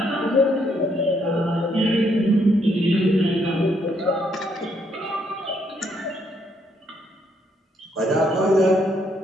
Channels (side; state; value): both; normal; correlation 0.72